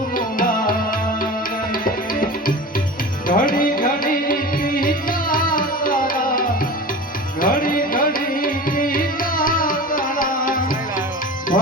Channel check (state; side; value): normal; both; correlation 0.33